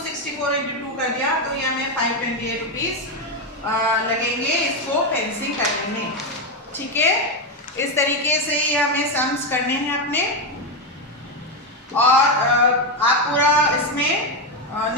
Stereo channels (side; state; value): both; normal; correlation 0.08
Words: × 2 कर दिया, तो ये हमें 528 रुपीज लगेंगे इसको फेंसिंग करने में। ठीक है, इस तरीके से ये हमें सम्स करने हैं अपने। और आप पूरा इसमें